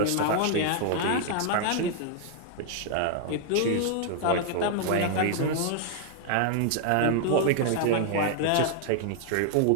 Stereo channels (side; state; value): both; different; correlation 0.00